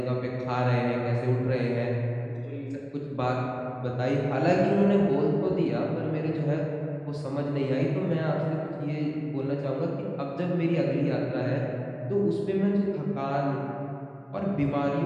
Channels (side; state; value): both; identical; correlation 1.00